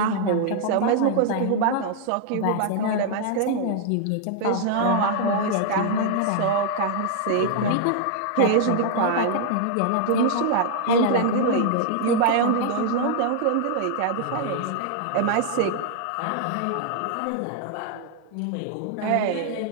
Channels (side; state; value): both; different; correlation 0.00